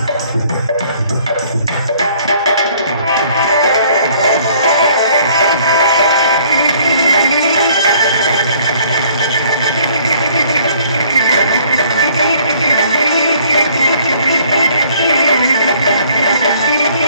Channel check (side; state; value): both; inverted; correlation -0.59